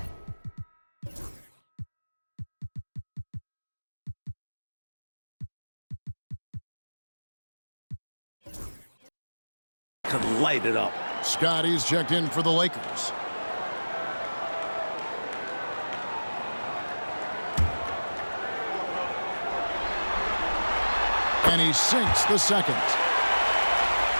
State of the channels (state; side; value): inverted; both; correlation -1.00